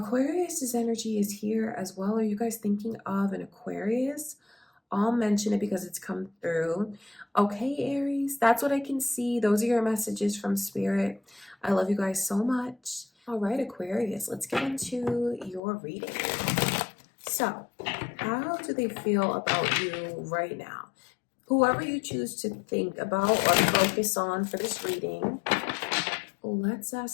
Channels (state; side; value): drops out; right; at 15.6 s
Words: energy is here as well. Are you guys thinking of an Aquarius? I'll mention it because it's come through. Okay, Aries, that's what I can see. Those are your messages from Spirit. I love you guys so much. All right, Aquarius, let's get into your reading. So, how do they feel about you right now? Whoever you choose to think about or focus on for this reading, let's